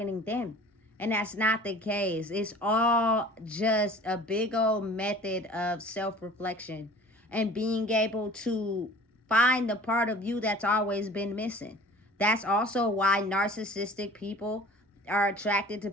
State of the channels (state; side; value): normal; both; correlation 0.46